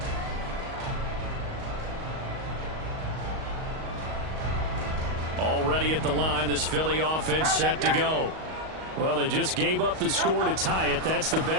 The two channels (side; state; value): left; late; 38 ms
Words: Already at the line, this Philly offense set to go. Well, they just gave up the score to tie it. That's the